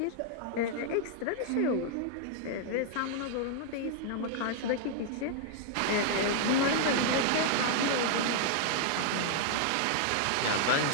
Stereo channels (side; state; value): both; different; correlation 0.00